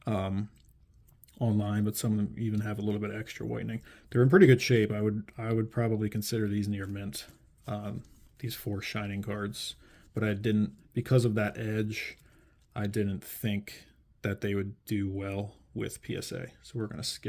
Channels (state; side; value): identical; both; correlation 1.00